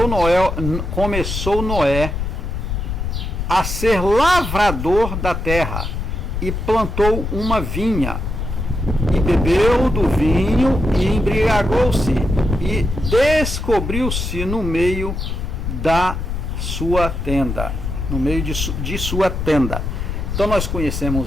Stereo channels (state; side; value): noise; left; rumble, 4 dB below the sound